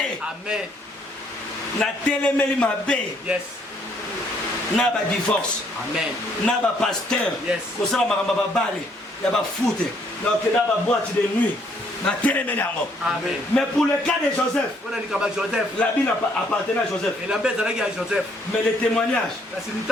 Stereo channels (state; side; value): normal; both; correlation 0.67